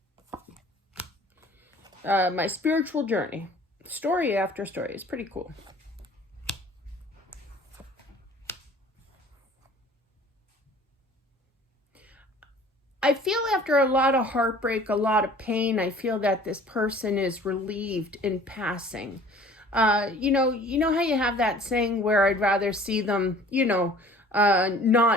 my spiritual journey. Story after story. It's pretty cool. I feel after a lot of heartbreak, a lot of pain, I feel that this person is relieved in passing. You know how you have that saying where I'd rather see them,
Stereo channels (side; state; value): both; normal; correlation 0.49